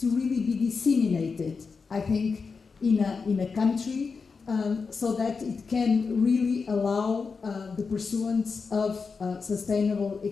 really be disseminated, I think, in a country, so that it can really allow the pursuance of sustainable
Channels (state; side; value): quieter; right; 5.0 dB